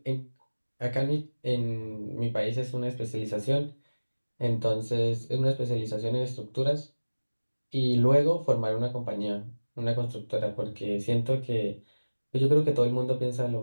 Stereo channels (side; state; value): both; inverted; correlation -1.00